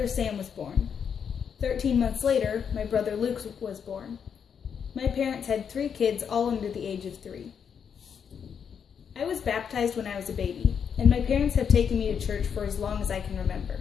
Sam was born. 13 months later, my brother Luke was born. My parents had 3 kids, all under the age of 3. I was baptized when I was a baby, and my parents have taken me to church for as long as I can remember.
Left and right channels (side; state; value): right; quieter; 7.3 dB